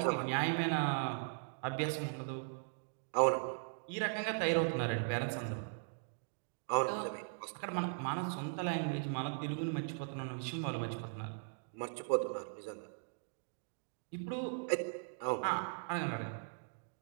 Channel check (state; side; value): silent; left; digital silence